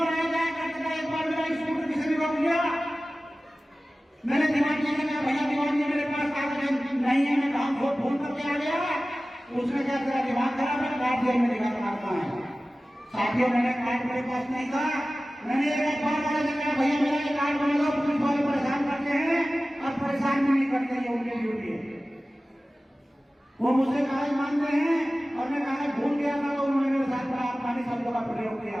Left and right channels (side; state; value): both; normal; correlation 0.96